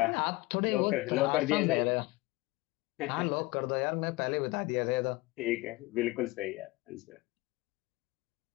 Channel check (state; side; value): quieter; right; 21.5 dB